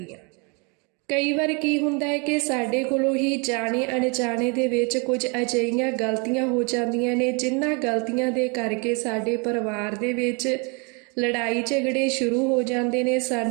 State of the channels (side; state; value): left; quieter; 32.7 dB